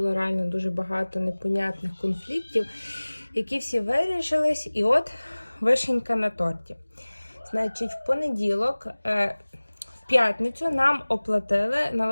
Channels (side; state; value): both; inverted; correlation -1.00